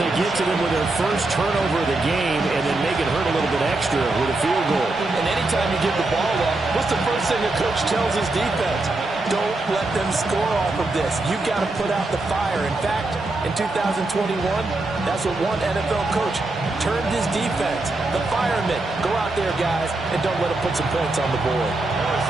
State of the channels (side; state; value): left; quieter; 3.0 dB